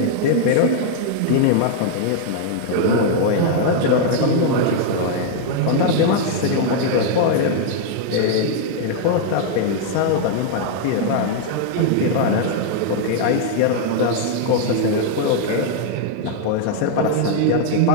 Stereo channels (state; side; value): different; both; correlation 0.00